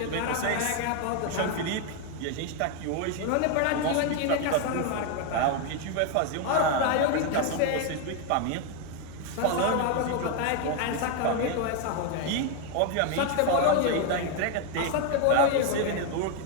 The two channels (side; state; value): both; different; correlation 0.01